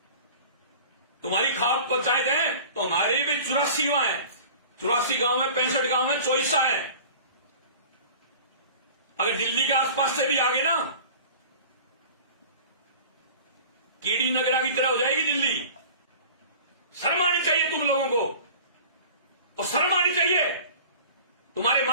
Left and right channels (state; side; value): inverted; both; correlation -0.41